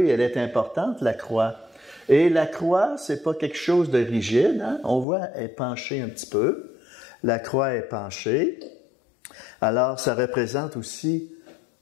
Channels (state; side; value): drops out; right; at 5.1 s